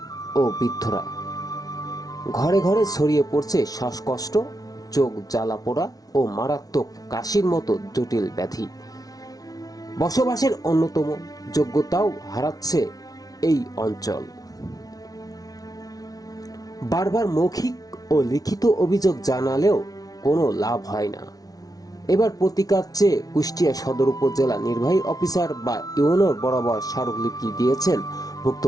ও বৃদ্ধরা। ঘরে ঘরে ছড়িয়ে পড়ছে শ্বাসকষ্ট, চোখ জ্বালা পোড়া ও মারাত্মক কাশির মতো জটিল ব্যাধি। বসবাসের অন্যতম যোগ্যতাও হারাচ্ছে এই অঞ্চল। বারবার মৌখিক ও লিখিত অভিযোগ জানালেও কোনো লাভ হয় না। এবার প্রতিকার চেয়ে কুষ্টিয়া সদর উপজেলা নির্বাহী অফিসার বা ইউনোর বরাবর স্মারকলিপি দিয়েছেন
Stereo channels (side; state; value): right; late; 0.18 ms